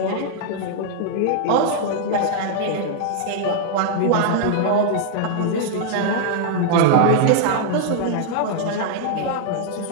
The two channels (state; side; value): different; both; correlation -0.01